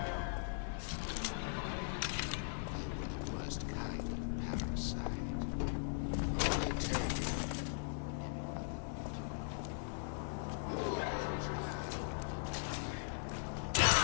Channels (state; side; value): silent; right; digital silence